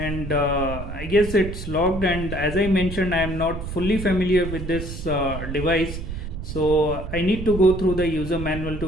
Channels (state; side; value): noise; right; rumble, 7 dB below the sound